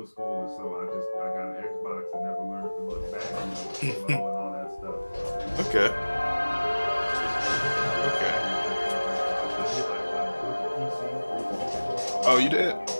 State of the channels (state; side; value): inverted; both; correlation -1.00